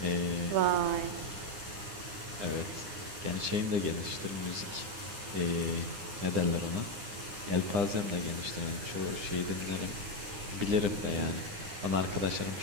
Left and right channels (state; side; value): late; left; 9.8 ms